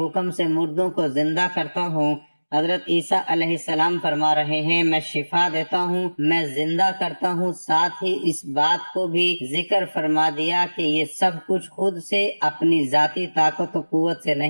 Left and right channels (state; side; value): inverted; both; correlation -1.00